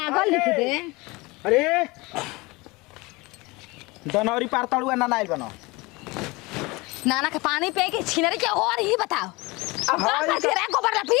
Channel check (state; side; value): quieter; right; 23.8 dB